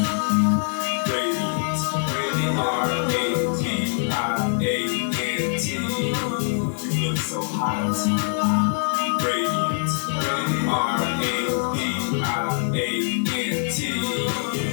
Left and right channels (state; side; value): silent; right; digital silence